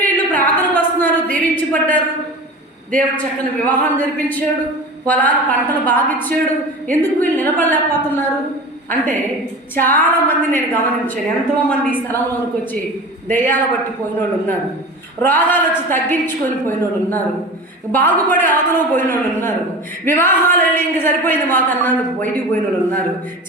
వీళ్ళు ప్రార్థనకు వస్తున్నారు, దీవించబడ్డారు, దేవుడు చక్కని వివాహం జరిపించాడు, పొలాలు పంటలు బాగా ఇచ్చాడు, ఎందుకు వీళ్ళు నిలబడలేకపోతున్నారు అంటే చాలామంది నేను గమనించాను. ఎంతోమంది ఈ స్థలంలోనికి వచ్చి దెయ్యాలు బట్టి పోయిన వాళ్ళు ఉన్నారు, రోగాలు వచ్చి తగ్గించుకొని పోయిన వాళ్ళు ఉన్నారు, బాగుపడి అవతలో పోయిన వాళ్ళు ఉన్నారు, వివాహాలు వెళ్ళి ఇంక సరిపోయింది మాకు అన్నాడు బయటికి పోయిన వాళ్ళు ఉన్నారు.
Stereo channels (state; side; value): normal; both; correlation 0.33